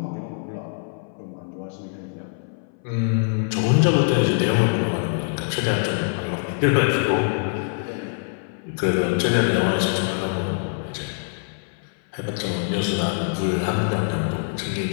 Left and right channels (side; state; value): right; silent; 59 dB below the other